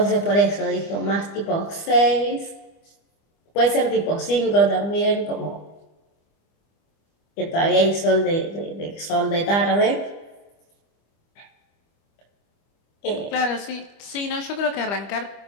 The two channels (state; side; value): late; right; 25 ms